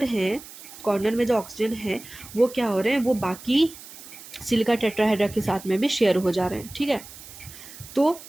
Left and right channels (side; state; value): right; noise; hiss, 16 dB below the sound